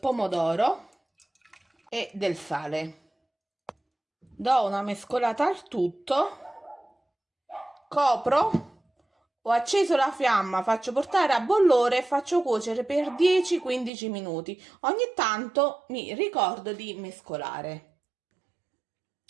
pomodoro e del sale. Do una mescolata al tutto, copro, ho acceso la fiamma, faccio portare a bollore e faccio cuocere per 10-15 minuti. Ogni tanto mi ricordo di mescolare.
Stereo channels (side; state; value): left; drops out; at 13.9 s